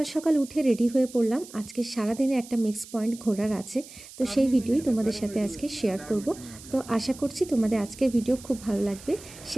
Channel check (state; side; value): noise; right; hiss, 18 dB below the sound